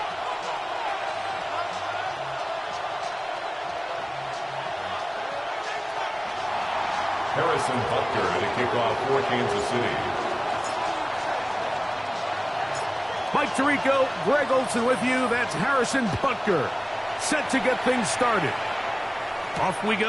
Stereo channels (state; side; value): identical; both; correlation 1.00